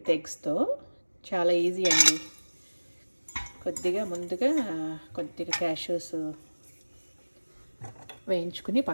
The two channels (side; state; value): both; inverted; correlation -1.00